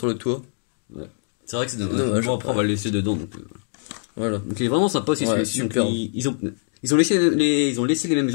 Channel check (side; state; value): right; silent; digital silence